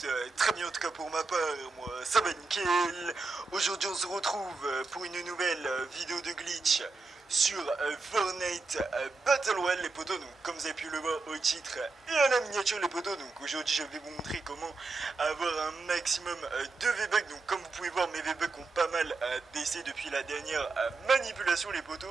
très bien, en tout cas pour ma part, moi ça va nickel. Aujourd'hui on se retrouve pour une nouvelle vidéo de glitch sur Fortnite Battle Royale les potos, donc comme vous avez pu le voir au titre et à la miniature les potos, donc aujourd'hui je vais vous montrer comment avoir un maximum de V-Bucks, donc comme vous pouvez voir mes V-Bucks ont pas mal baissé depuis la dernière manipulation les potos,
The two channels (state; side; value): quieter; left; 3.8 dB